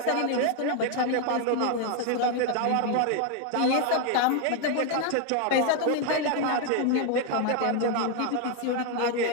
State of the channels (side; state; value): both; different; correlation 0.01